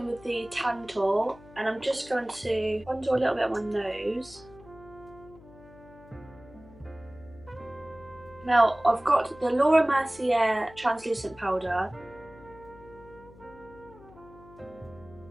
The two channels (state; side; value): noise; left; hum, 22 dB below the sound